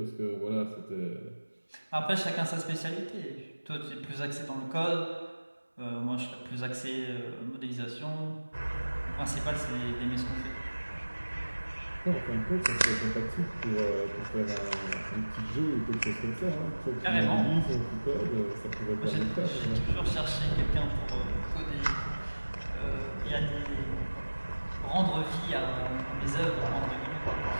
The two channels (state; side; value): inverted; both; correlation -1.00